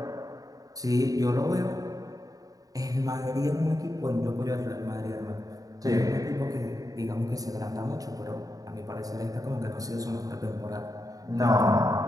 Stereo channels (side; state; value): left; late; 0.17 ms